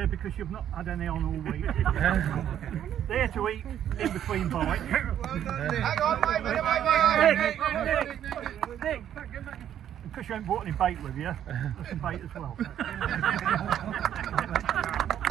because you've not had any on all week. There to eat in between bites. Well done, Nick. Hang on, mate. Nick, because you haven't brought any bait with you, there's some bait as well.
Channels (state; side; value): quieter; left; 10.3 dB